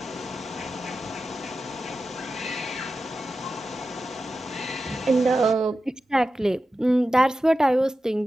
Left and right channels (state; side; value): normal; both; correlation 0.92